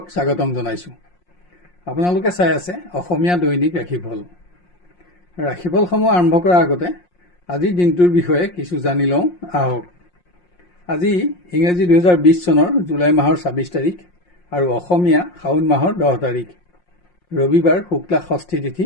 স্বাগতম জনাইছোঁ। আপোনালোকে চাই আছে অসমীয়া দৈনিক ৰাশিফল। ৰাশিফলসমূহ আৰম্ভ কৰাৰ আগতে আজিৰ দিনটোৰ বিষয়ে কিছু জানি লওঁ আহক। আজি ইংৰাজী 2020 চনৰ জুলাই মাহৰ 26 তাৰিখ আৰু অসমীয়া শাওণ মাহৰ 10 তাৰিখ, ৰবিবাৰ, শুক্লা ষষ্ঠী তিথি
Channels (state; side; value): late; right; 5.6 ms